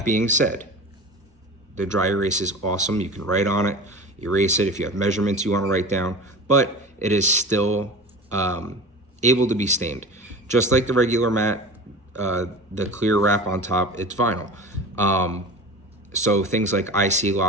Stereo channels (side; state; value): both; normal; correlation 0.34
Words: being said, the dry erase is awesome. You can write on it, erase it if you have measurements you want to write down, but it is still able to be stained. Just like the regular mat, the clear wrap on top, it's vinyl. So things like IC